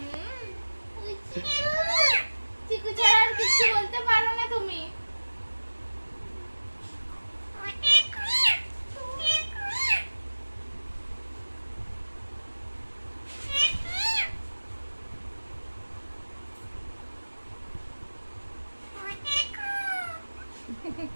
চিকু ছাড়া আর কিছু বলতে পারো না তুমি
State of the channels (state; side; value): inverted; both; correlation -1.00